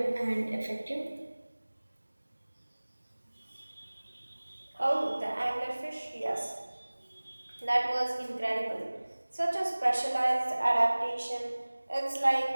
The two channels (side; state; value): both; inverted; correlation -1.00